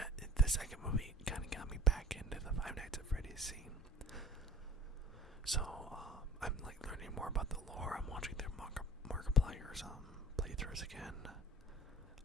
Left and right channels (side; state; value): both; normal; correlation 0.41